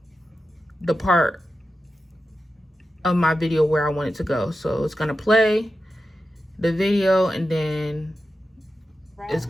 the part of my video where I want it to go. So it's gonna play the video, and then it's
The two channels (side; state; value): both; normal; correlation 0.91